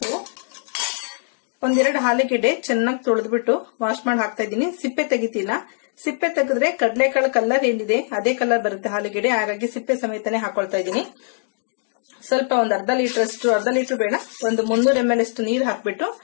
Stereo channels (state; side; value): silent; right; 58 dB below the other